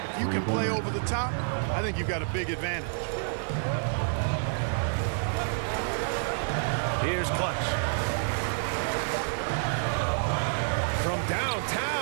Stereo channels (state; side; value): silent; left; 59 dB below the other